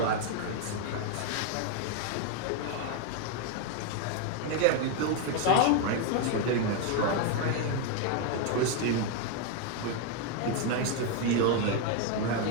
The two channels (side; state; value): both; different; correlation 0.01